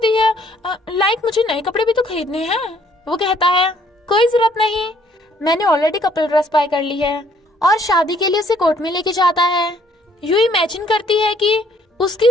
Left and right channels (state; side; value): normal; both; correlation 0.64